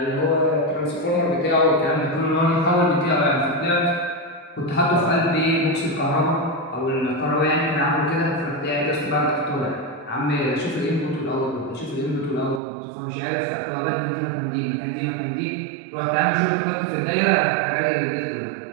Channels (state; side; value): drops out; left; at 12.6 s